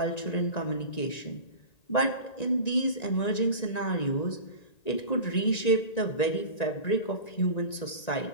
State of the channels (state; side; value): late; right; 1.9 ms